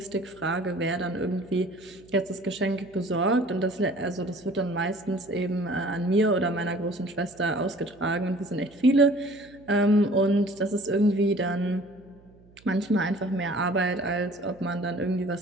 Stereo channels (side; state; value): right; noise; hum, 27 dB below the sound